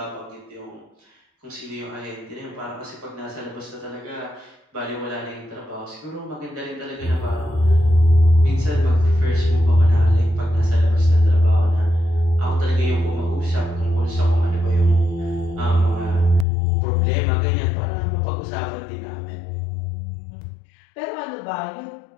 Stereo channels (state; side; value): drops out; right; at 16.4 s